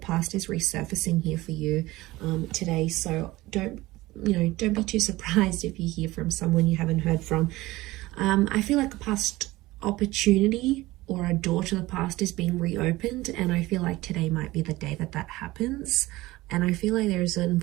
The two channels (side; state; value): left; quieter; 18.9 dB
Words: is resurfacing here for you today. So don't be too surprised if you hear from someone you haven't heard from. I feel like a past opportunity or a door to the past is being reopened, and I feel like today might be the day that that happens. And I feel like there's an